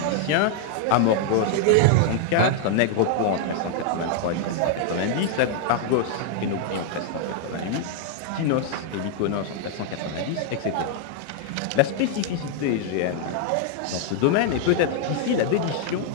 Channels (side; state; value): both; different; correlation -0.01